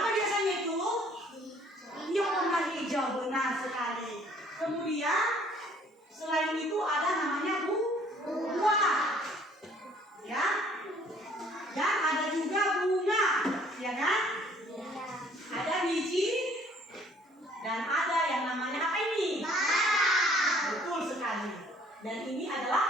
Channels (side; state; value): both; normal; correlation 0.58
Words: biasanya itu? Yang warna hijau, benar sekali. Kemudian selain itu ada namanya buah, ya, dan ada juga bunga, ya kan? Ada biji dan ada yang namanya apa ini? Betul sekali. Dan ini